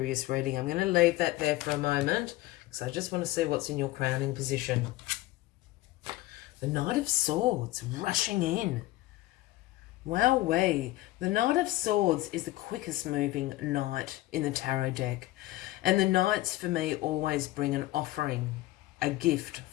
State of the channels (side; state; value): right; quieter; 17.5 dB